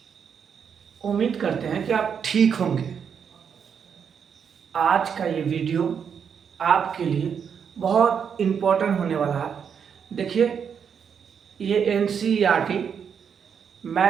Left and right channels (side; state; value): left; quieter; 7.2 dB